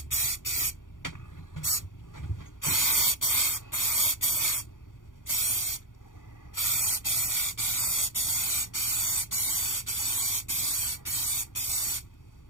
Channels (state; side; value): late; right; 0.88 ms